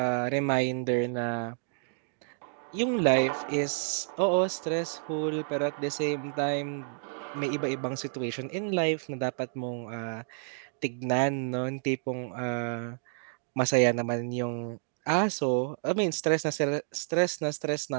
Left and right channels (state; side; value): silent; left; digital silence